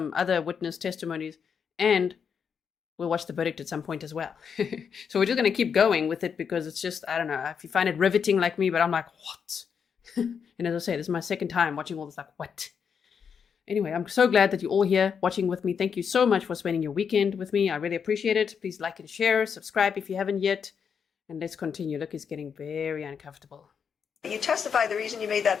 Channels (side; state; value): right; quieter; 6.8 dB